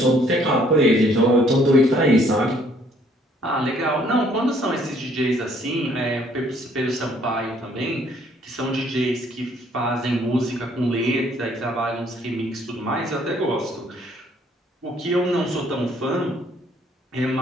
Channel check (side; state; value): both; normal; correlation 0.63